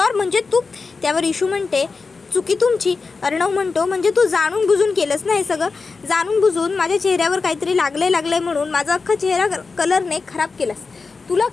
म्हणजे तू? त्यावर इशू म्हणते चुकी तुमची. अर्णव म्हणतो म्हणजे तू जाणून बुजून केलंस ना हे सगळं? जाणून बुजून माझ्या चेहऱ्यावर काहीतरी लागलंय म्हणून माझा अख्खा चेहरा कलरने खराब केलास. तुला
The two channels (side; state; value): right; quieter; 4.4 dB